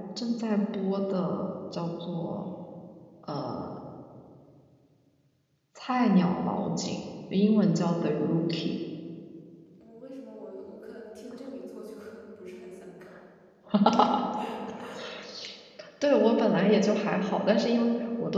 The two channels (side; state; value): both; identical; correlation 1.00